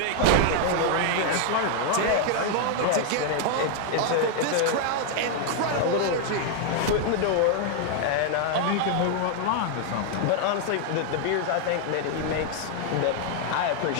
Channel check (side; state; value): both; different; correlation 0.00